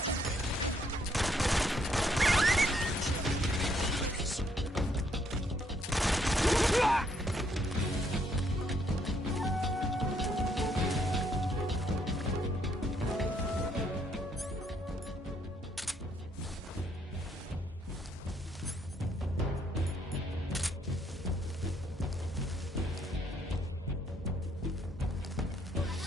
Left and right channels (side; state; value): both; normal; correlation 0.70